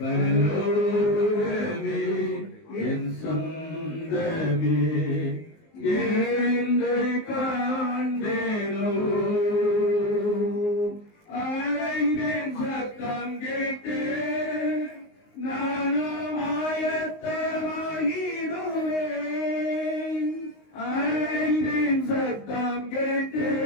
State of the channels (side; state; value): right; late; 19 ms